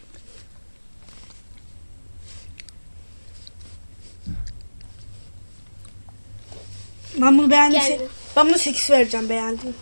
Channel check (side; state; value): both; inverted; correlation -1.00